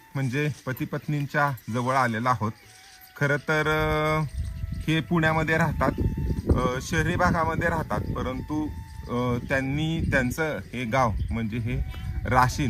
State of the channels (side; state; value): both; identical; correlation 1.00